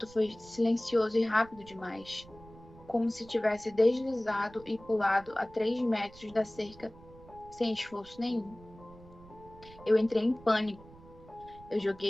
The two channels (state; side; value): noise; right; rumble, 21 dB below the sound